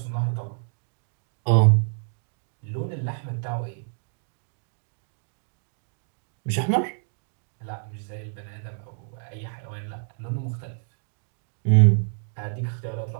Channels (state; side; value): silent; left; digital silence